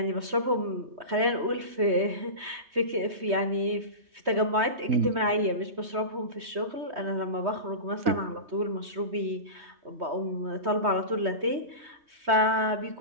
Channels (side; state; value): left; late; 3.2 ms